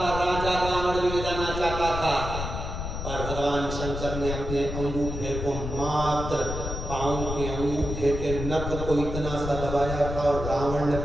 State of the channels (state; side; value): noise; left; rumble, 5 dB below the sound